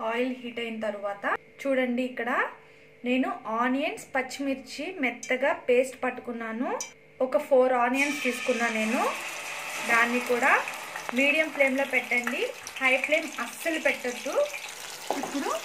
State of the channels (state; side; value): identical; both; correlation 1.00